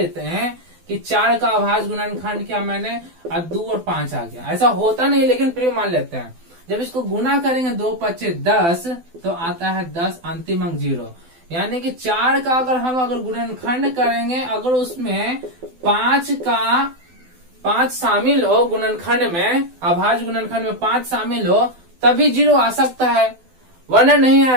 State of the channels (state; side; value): late; left; 12 ms